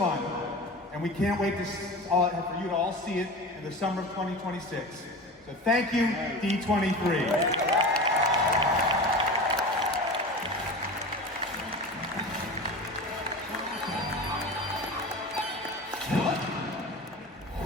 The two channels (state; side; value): normal; both; correlation 0.31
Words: and we can't wait for you to all see it in the summer of 2026. So thank you, D23.